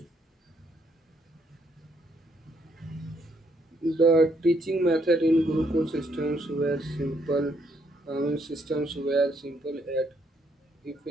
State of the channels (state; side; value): normal; both; correlation 0.72